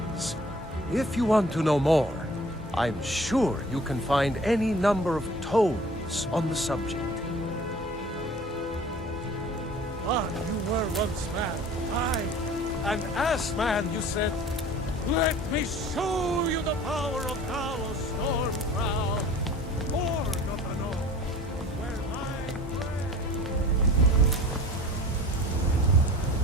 If you want to know more, I'm sure you can find any number of tomes on the subject. But you were once man, aye, and as man you said, "Let me show you the power of Talos Stormcrown, Lord of the North, where my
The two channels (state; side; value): normal; both; correlation 0.45